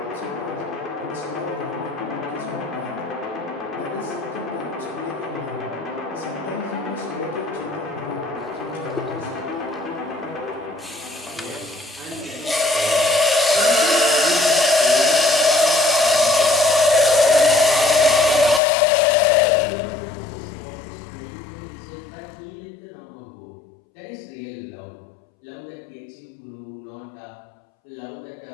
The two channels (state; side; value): drops out; right; at 18.6 s